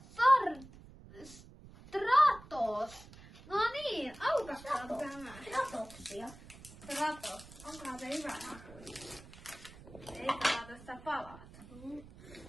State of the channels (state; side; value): noise; right; rumble, 19 dB below the sound